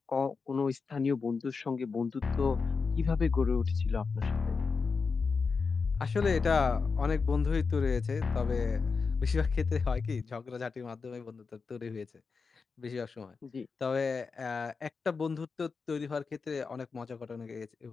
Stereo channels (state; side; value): quieter; right; 4.9 dB